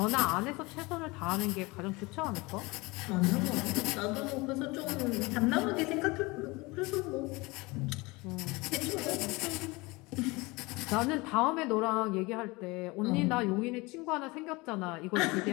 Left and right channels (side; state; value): right; quieter; 24.0 dB